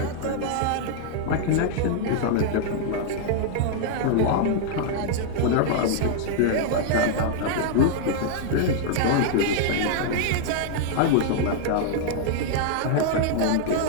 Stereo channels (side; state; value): both; different; correlation -0.01